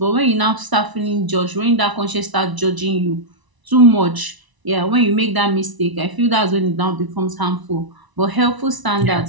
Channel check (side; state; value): left; late; 1.0 ms